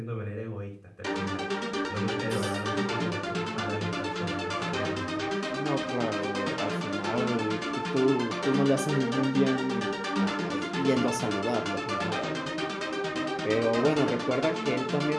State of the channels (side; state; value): both; identical; correlation 1.00